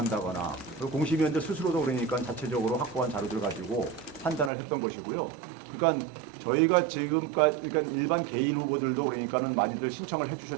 그리고 공심위원들 스스로도 그러니까 자체적으로 확보한 자료들 가지고 판단을 했던 것이고요. 그러니까 저희가 지금까지 그러니까 일반 개인 후보들도 그러니까는 많이들 신청을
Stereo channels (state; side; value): drops out; left; at 4.5 s